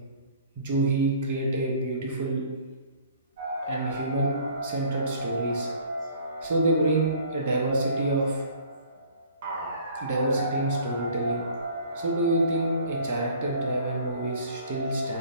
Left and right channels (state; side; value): inverted; both; correlation -0.52